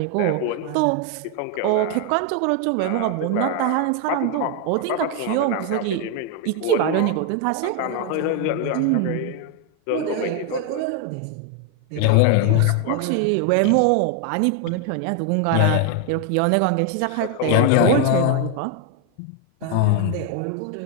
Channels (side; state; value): both; different; correlation 0.01